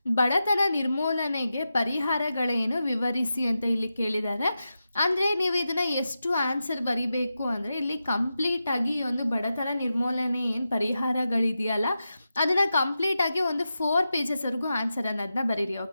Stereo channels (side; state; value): both; inverted; correlation -0.90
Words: ಬಡತನ ನಿರ್ಮೂಲನೆಗೆ ಪರಿಹಾರಗಳೇನು ವಿವರಿಸಿ ಅಂತ ಇಲ್ಲಿ ಕೇಳಿದ್ದಾರೆ. ಅಂದರೆ ನೀವು ಇದನ್ನು ಎಷ್ಟು ಆನ್ಸರ್ ಬರಿಬೇಕು ಅಂದರೆ ಇಲ್ಲಿ ಕಂಪ್ಲೀಟಾಗಿ ಈ ಒಂದು ಬಡತನ ನಿರ್ಮೂಲನೆ ಏನು ಪರಿಹಾರಗಳಿದೆಯಲ್ಲ ಅದನ್ನು ಕಂಪ್ಲೀಟಾಗಿ ಒಂದು 4 ಪೇಜಸ್ವರೆಗೂ ಆನ್ಸರ್ ಅನ್ನೋದನ್ನ ಬರೀರಿ,